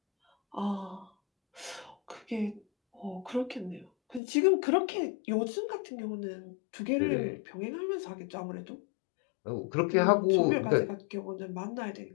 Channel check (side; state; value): right; drops out; at 4.2 s